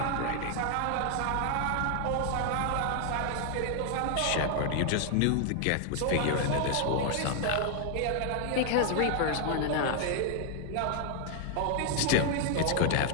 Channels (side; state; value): both; different; correlation 0.00